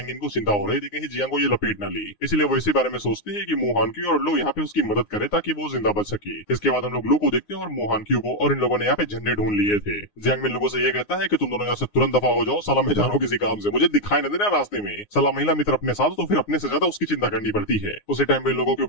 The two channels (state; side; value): late; right; 9.7 ms